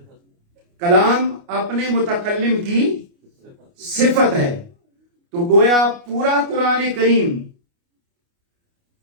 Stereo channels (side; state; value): left; late; 29 ms